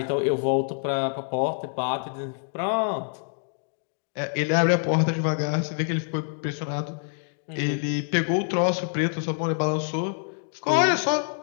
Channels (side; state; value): right; silent; 61 dB below the other